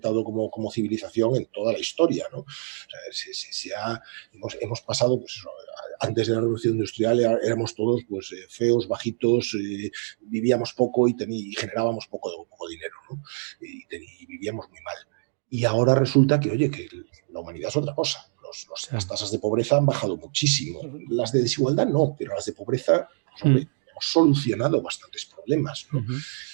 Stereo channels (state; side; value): silent; left; digital silence